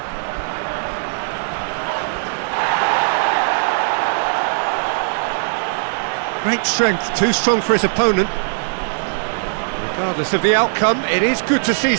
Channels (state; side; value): silent; left; 66 dB below the other